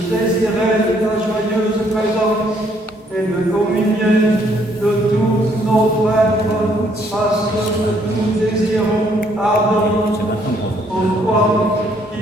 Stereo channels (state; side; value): normal; both; correlation 0.67